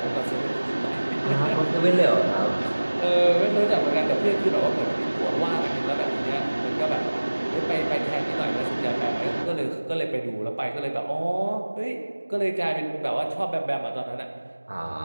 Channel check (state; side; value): inverted; both; correlation -1.00